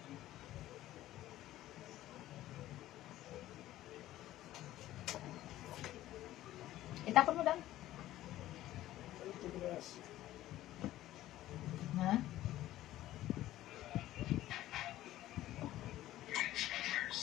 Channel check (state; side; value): quieter; right; 14.6 dB